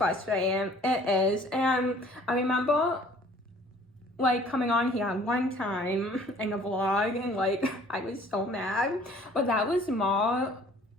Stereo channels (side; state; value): both; normal; correlation 0.54